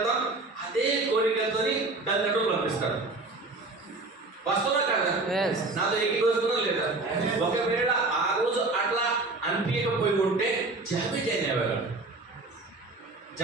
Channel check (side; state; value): left; quieter; 3.3 dB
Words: అదే కోరికలతో తల్లిదండ్రులు పంపిస్తారు. వాస్తవా కదా? నాతో ఎక్కిపోతున్నా లేదా? ఒకవేళ ఆ రోజు అట్లా అనిపించకపోయి ఉంటే జాబ్కి జాయిన్ అయ్యేవాళ్ళు,